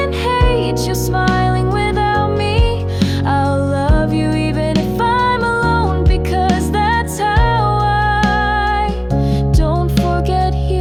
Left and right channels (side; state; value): both; identical; correlation 1.00